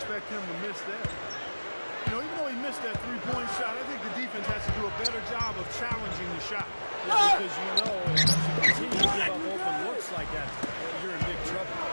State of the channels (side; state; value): both; inverted; correlation -1.00